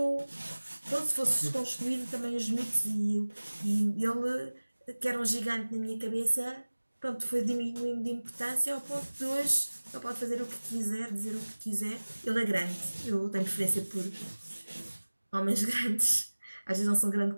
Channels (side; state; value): both; inverted; correlation -1.00